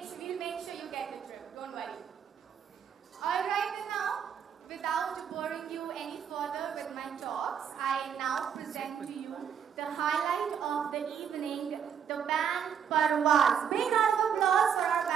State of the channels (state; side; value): quieter; left; 7.9 dB